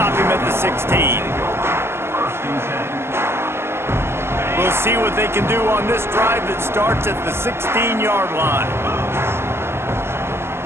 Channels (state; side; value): late; left; 0.12 ms